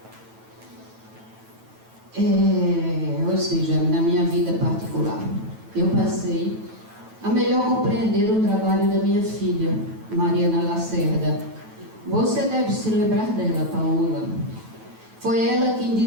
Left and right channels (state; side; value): late; left; 9.1 ms